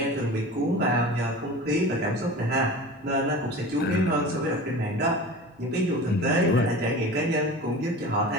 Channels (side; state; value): both; normal; correlation 0.35